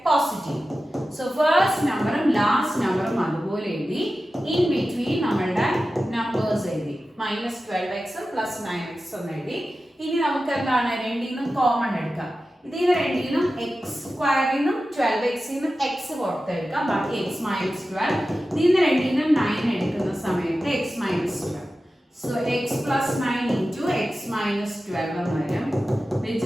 പോസിറ്റീവും. സോ ഫസ്റ്റ് നമ്പറും ലാസ്റ്റ് നമ്പറും അതുപോലെ എഴുതി. ഇൻ ബിറ്റ്വീൻ നമ്മളുടെ നമ്പേഴ്സ് എഴുതി. -12x +9x എന്ന് എഴുതി. ഇനി നമുക്ക് എന്താണ് രണ്ടിൽ നിന്നും കോമൺ എടുക്കാം. ഇതിൽ രണ്ടിനും എക്സ് സ്ക്വയറിൽ നിന്നും 12x നിന്നും എക്സ് പുറത്തെടുക്കാം. ബാക്കി x minus 12. ഇതിൽ രണ്ടിനും 9 എടുക്കുന്ന സമയത്ത് x minus 12. So x plus 9 into x minus 12 എന്ന് വരും, which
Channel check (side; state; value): both; normal; correlation 0.94